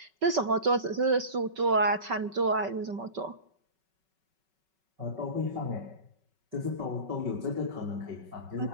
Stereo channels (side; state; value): left; late; 5.3 ms